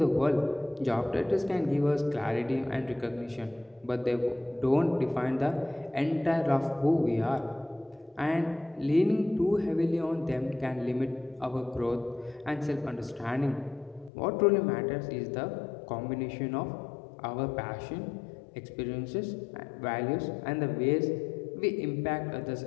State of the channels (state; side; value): drops out; right; at 14.1 s